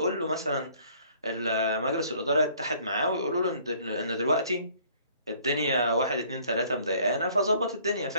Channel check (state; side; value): inverted; both; correlation -0.58